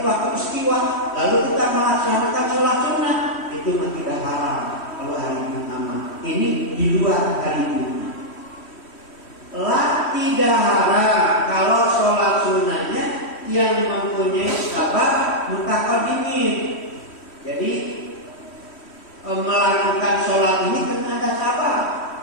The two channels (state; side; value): late; right; 3.1 ms